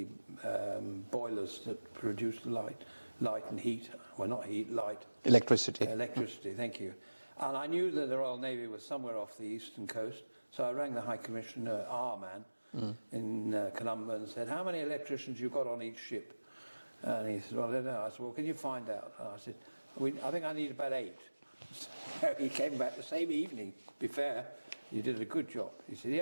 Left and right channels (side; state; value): both; inverted; correlation -1.00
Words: boilers that produced light and heat. Well, not heat, light. Electricity. Electricity, thank you. And I knew that the Royal Navy was somewhere off the eastern coast, so I rang the High Commissioner, our man, in Colombo, and said, how many electricians you got on each ship? And he said, well, I don't know. I said, well, can you find out? And I said, I think I need about 8. So he came back the same evening. Be fair, you did a good job. He said,